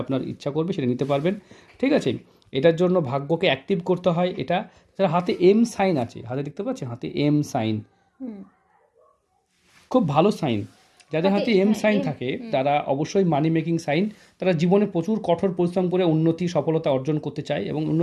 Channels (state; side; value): identical; both; correlation 1.00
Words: আপনার ইচ্ছা করবে সেটা নিতে পারবেন, ঠিক আছে। এটার জন্য ভাগ্যকে অ্যাক্টিভ করতে হয়। এটা হাতে এম সাইন আছে, হাতে দেখতে পাচ্ছেন হাতে এম সাইন, খুব ভালো সাইন। যাদের হাতে এম সাইন থাকে তারা অবশ্যই মানি মেকিং সাইন, তারা জীবনে প্রচুর কঠোর পরিশ্রম করে উন্নতি সফলতা অর্জন করতে চায় এবং